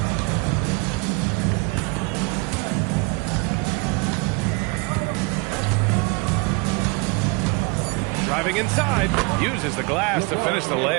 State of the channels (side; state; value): left; quieter; 28.7 dB